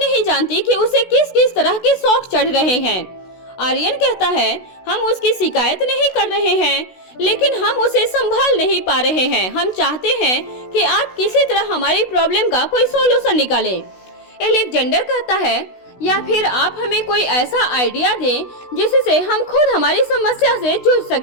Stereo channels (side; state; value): right; late; 16 ms